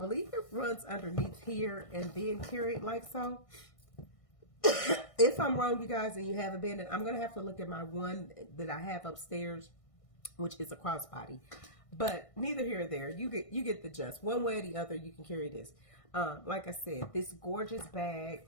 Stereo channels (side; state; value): right; late; 1.6 ms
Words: it runs underneath here and then carried like so. If I'm wrong, you guys, and you have a Bandit, I'm going to have to look at my one that I have upstairs, which is a crossbody. But neither here or there. You get the gist. One way or the other, you can carry this. Like I said, this gorgeous